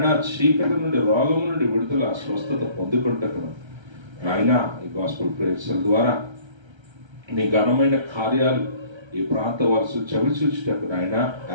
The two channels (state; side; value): late; left; 1.3 ms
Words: చీకటి నుండి, రోగము నుండి విడుదల, స్వస్థత పొందుకుంటకును నాయన, ఈ గాస్పెల్ ప్రేయర్స్ ద్వారా నీ ఘనమైన కార్యాలు ఈ ప్రాంత వరుస చవిచూచుటకు నాయన